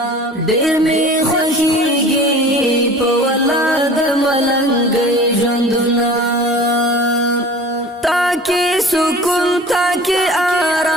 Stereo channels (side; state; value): both; normal; correlation 0.42